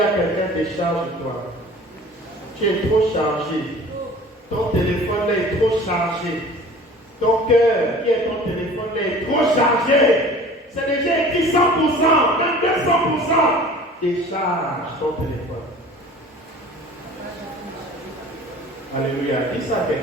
quelqu'un décharge-toi. Tu es trop chargé. Ton téléphone là est trop chargé. Ton cœur, qui est ton téléphone là est trop chargé. C'est déjà écrit 100%, même 200%. Décharge ton téléphone. Alléluia. Dis ça à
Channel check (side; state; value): both; normal; correlation 0.44